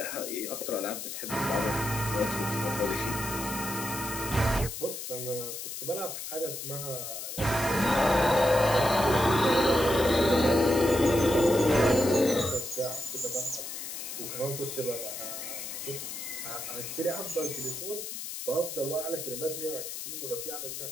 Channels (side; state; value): left; noise; hiss, 7 dB below the sound